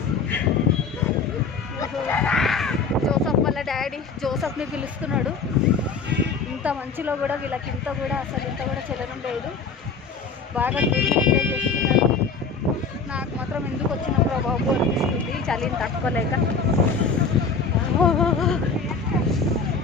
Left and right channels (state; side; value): quieter; right; 4.8 dB